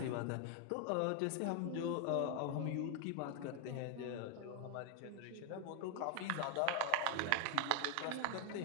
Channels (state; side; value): different; both; correlation 0.00